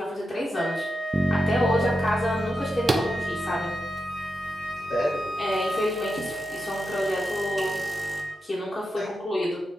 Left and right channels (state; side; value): normal; both; correlation 0.88